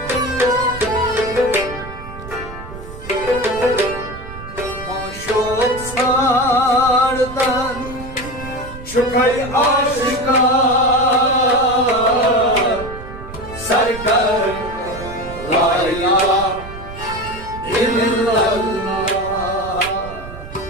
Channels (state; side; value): noise; right; rumble, 13 dB below the sound